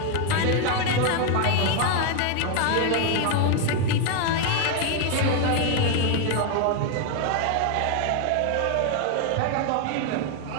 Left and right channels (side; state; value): both; different; correlation 0.01